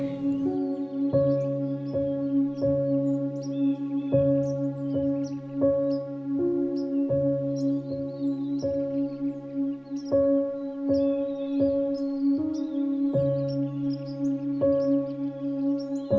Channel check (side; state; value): both; identical; correlation 1.00